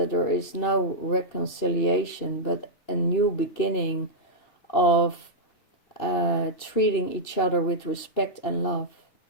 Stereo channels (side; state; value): right; late; 2.7 ms